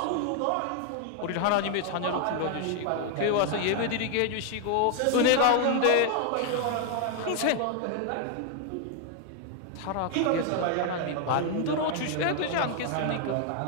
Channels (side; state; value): both; different; correlation 0.00